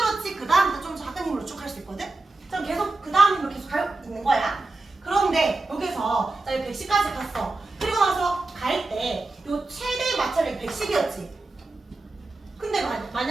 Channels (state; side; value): quieter; left; 3.2 dB